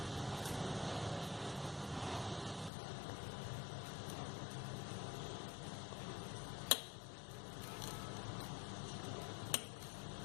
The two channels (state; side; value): drops out; right; at 2.7 s